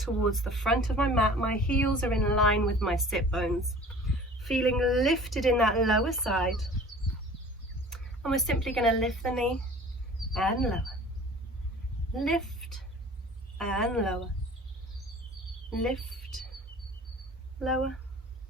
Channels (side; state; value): both; normal; correlation 0.45